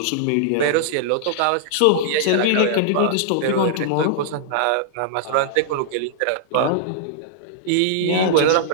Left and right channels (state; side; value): different; both; correlation -0.01